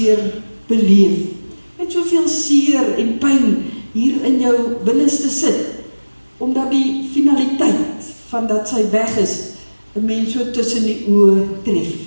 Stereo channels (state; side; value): inverted; both; correlation -1.00